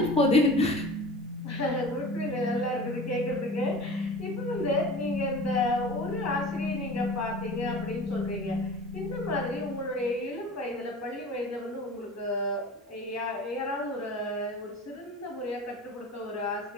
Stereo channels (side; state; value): both; normal; correlation 0.38